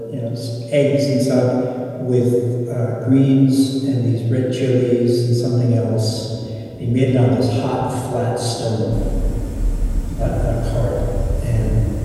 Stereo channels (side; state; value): both; identical; correlation 1.00